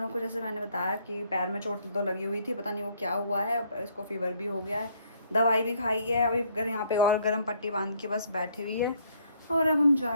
को जैसे मैंने बताया कि पैर में चोट तो लगी हुई थी, पता नहीं वो क्या हुआ है, इसको फीवर भी हो गया है, दवाई भी खाई है। अभी घर यहाँ पे और गर्म पट्टी बांध के बस बैठी हुई है, और अब हम जा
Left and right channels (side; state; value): both; inverted; correlation -0.66